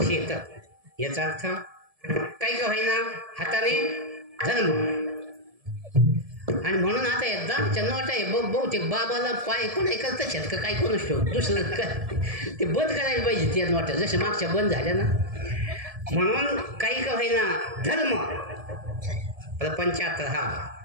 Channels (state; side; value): late; left; 1.7 ms